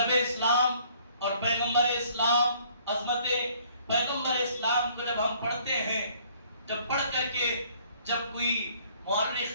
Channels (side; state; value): both; inverted; correlation -0.60